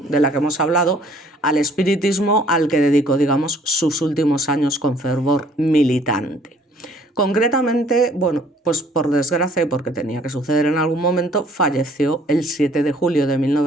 de la que hemos hablado al espiritismo, al que dedicó, digamos, sus últimos años con fervor militante. Concretamente, bueno, pues por desgracia y porque tenía que suceder en algún momento, falleció el 7 de julio de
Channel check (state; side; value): normal; both; correlation 0.59